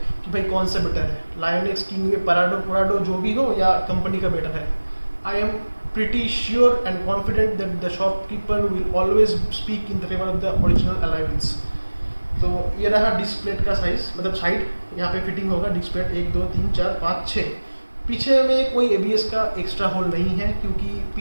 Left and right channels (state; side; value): inverted; both; correlation -1.00